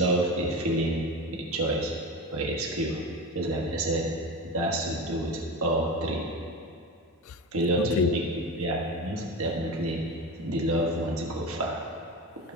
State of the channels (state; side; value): normal; both; correlation 0.26